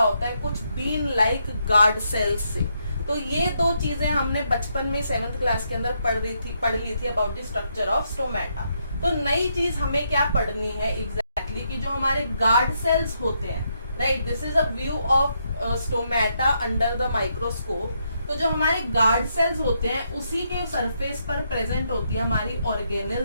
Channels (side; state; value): both; inverted; correlation -0.78